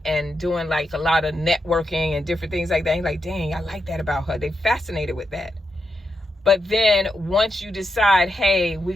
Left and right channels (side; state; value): both; normal; correlation 0.85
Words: doing like a lot of networking and different things like that. And you're like, dang, I like that about her. They fascinated with that. But then once you decide, hey, we're